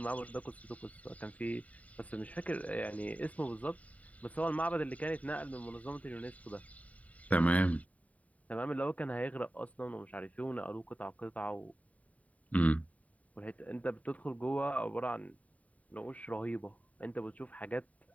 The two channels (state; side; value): late; right; 0.069 ms